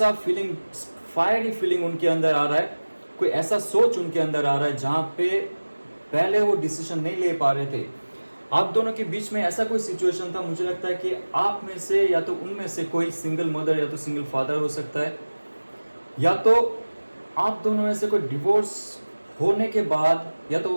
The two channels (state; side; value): inverted; both; correlation -1.00